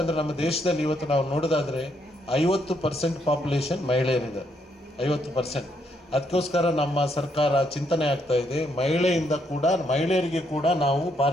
ನಮ್ಮ ದೇಶದಲ್ಲಿ ಇವತ್ತು ನಾವು ನೋಡೋದಾದರೆ 50% ಪಾಪ್ಯುಲೇಷನ್ ಮಹಿಳೆಯರಿದ್ದಾರೆ, 50%. ಅದಕ್ಕೋಸ್ಕರ ನಮ್ಮ ಸರ್ಕಾರ ಚಿಂತನೆ ಆಗ್ತಾ ಇದೆ, ಮಹಿಳೆಯರಿಗೆ ಕೂಡ ನಾವು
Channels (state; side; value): normal; both; correlation 0.74